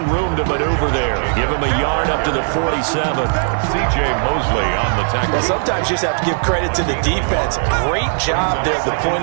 room to maneuver there. Give him a yard up to the 47. C.J. Mosley on the tackle. Well, sometimes you just have to give credit to the defense. Great job there at the point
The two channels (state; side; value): silent; left; 68 dB below the other